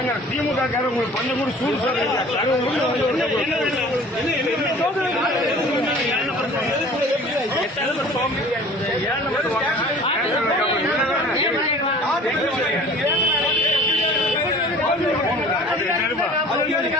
திமுக காரங்க உங்களுக்கு கொஞ்சம் கூட சூடு சொல்றீங்க.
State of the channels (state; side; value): normal; both; correlation 0.46